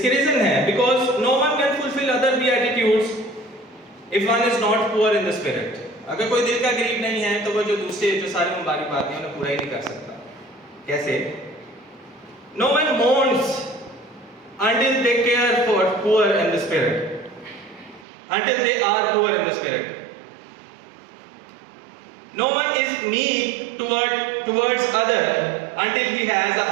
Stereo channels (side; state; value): left; drops out; at 18.1 s